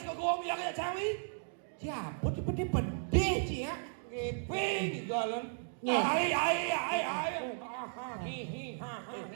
sekolah bilang ya cawi. Siapa di pede sih ya? Ngepeng galan. Ai.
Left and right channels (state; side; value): silent; left; digital silence